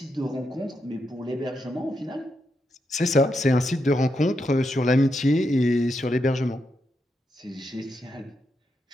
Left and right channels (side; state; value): both; normal; correlation 0.83